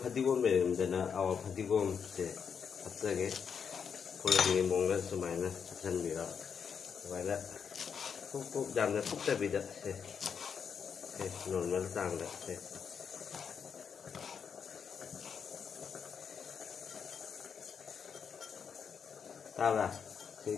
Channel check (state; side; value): quieter; right; 6.8 dB